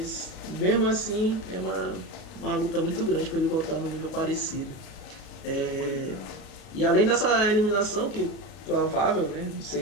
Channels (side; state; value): right; late; 33 ms